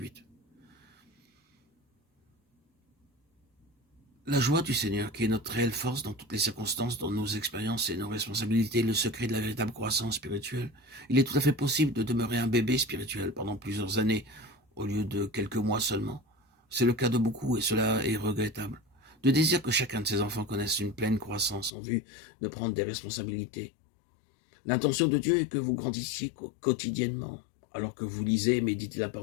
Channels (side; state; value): right; drops out; at 21.7 s